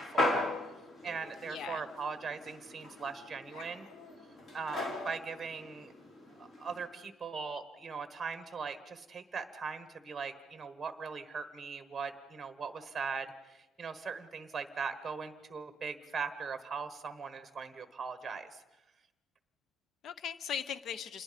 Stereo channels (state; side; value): normal; both; correlation 0.72